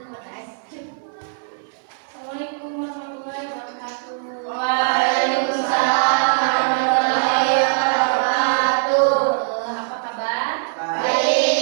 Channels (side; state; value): left; silent; 56 dB below the other